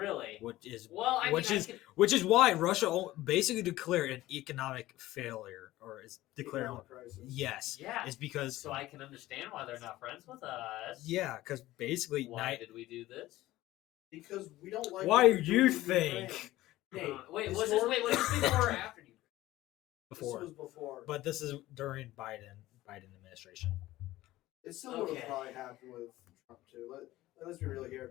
which is Well, I which mean, is which is why Russia basically declared an economic failure, or is declaring Economic crisis. yes, yeah. it's because So I can understand why they're not friends with us. yeah, because basically Why did we do this? Because we don't like. Why what they're do you doing in think? Ukraine. Hey, Wait, was this before or after you? before, This was before. but this is during Biden administration. It still would Okay. have probably happened with Trump too. Let's be real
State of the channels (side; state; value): right; quieter; 16.5 dB